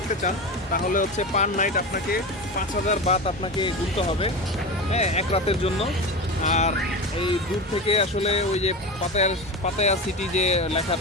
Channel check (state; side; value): normal; both; correlation 0.24